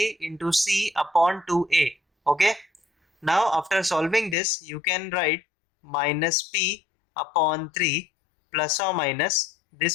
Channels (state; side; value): drops out; right; at 4.4 s